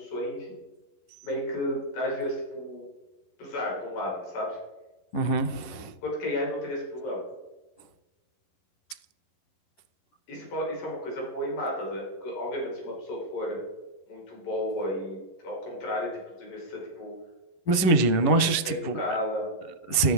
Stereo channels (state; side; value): late; right; 11 ms